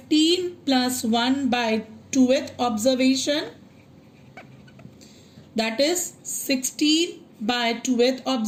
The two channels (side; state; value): both; identical; correlation 1.00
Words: plus 1 by 2th observation, that is 16 by 2th